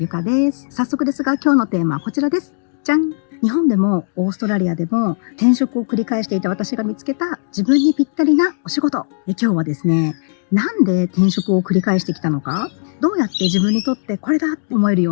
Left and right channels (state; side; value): silent; right; digital silence